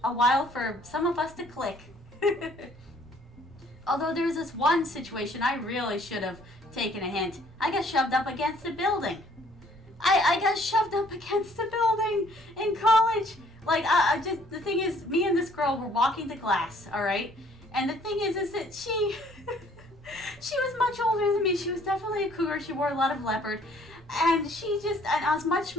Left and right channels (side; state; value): both; normal; correlation 0.60